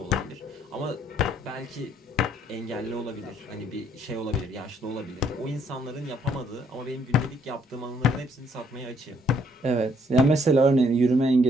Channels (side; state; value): both; normal; correlation 0.66